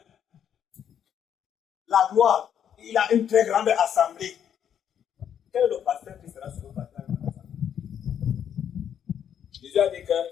La gloire, il a une très grande assemblée. Quel est le pasteur qui sera sur le pasteur? Jésus a dit que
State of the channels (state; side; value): quieter; right; 9.0 dB